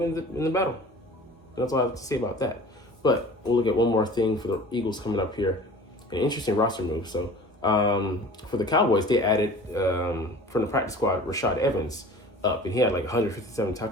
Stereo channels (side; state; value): both; normal; correlation 0.43